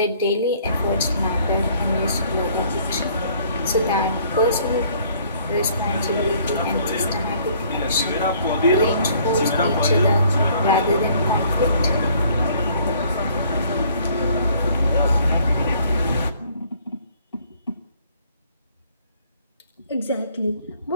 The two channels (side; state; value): both; inverted; correlation -0.60